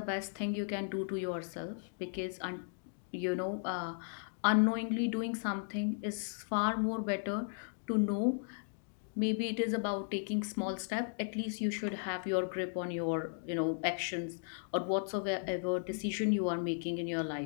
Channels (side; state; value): right; silent; digital silence